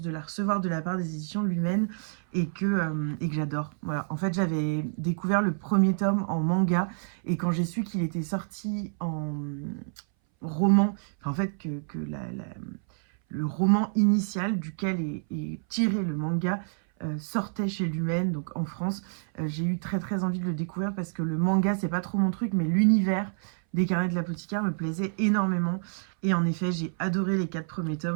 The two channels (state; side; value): silent; left; 59 dB below the other